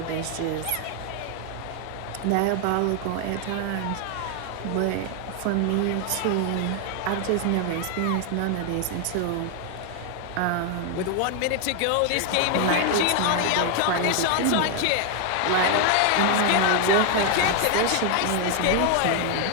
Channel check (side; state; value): both; different; correlation 0.00